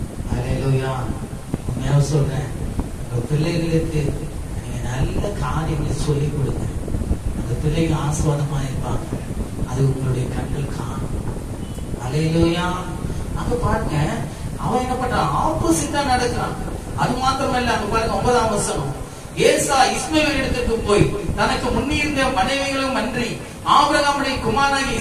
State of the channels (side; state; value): both; identical; correlation 1.00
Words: அல்லேலூயா. உண்மையா சொல்றேன், உங்க பிள்ளைகளுக்கு நீங்க நல்ல காரியங்களை சொல்லிக் கொடுங்க, அந்த பிள்ளைங்க ஆசீர்வாதமா இருப்பாங்க, அது உங்களுடைய கண்கள் காணும். அல்லேலூயா. அங்க பாருங்க, அவன் என்ன பண்றான், ஆப்போசிட்டா நடக்கிறான். அது மாத்திரமல்ல, அங்க பாருங்க 9ஆம் வசனம், ஏசா இஸ்மவேல் இடத்துக்கு போய் தனக்கு முன்னிருந்த மனைவிகளும் அன்றி ஆபிரகாமுடைய குமாரனாகிய